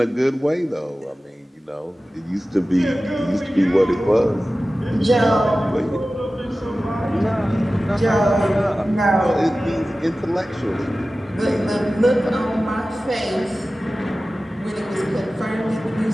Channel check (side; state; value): both; normal; correlation 0.96